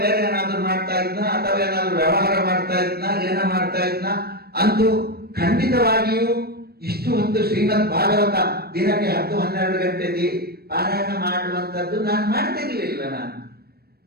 ಬೇರೆ ಏನಾದ್ರು ಮಾಡ್ತಾ ಇದ್ನ, ಅಥವಾ ಏನಾದ್ರು ವ್ಯವಹಾರ ಮಾಡ್ತಾ ಇದ್ನ, ಏನೋ ಮಾಡ್ತಾ ಇದ್ನ. ಅಂತೂ ಖಂಡಿತವಾಗಿಯೂ ಇಷ್ಟು ಹೊತ್ತು ಶ್ರೀಮದ್ ಭಾಗವತ ದಿನಕ್ಕೆ 10-12 ಗಂಟೆ ಪಾರಾಯಣ ಮಾಡುವಂತದ್ದು ನಾನು ಮಾಡ್ತಿರ್ಲಿಲ್ಲ ನಾನು.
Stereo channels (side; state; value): left; late; 0.46 ms